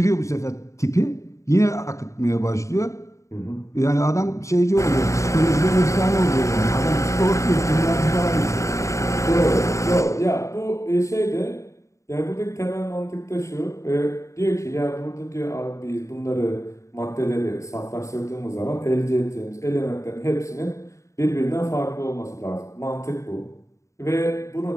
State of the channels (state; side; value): late; right; 0.15 ms